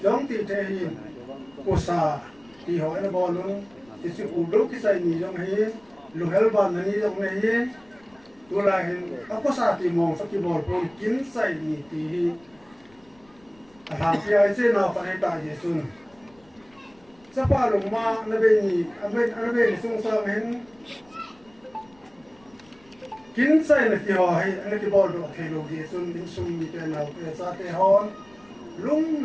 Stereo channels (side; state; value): left; noise; rumble, 30 dB below the sound